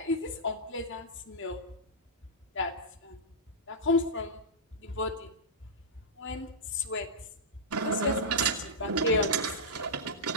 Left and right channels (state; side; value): normal; both; correlation -0.12